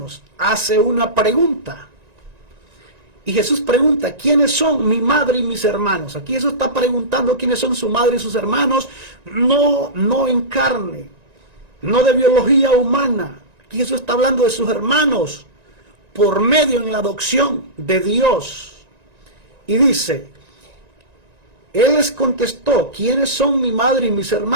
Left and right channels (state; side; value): late; left; 1.9 ms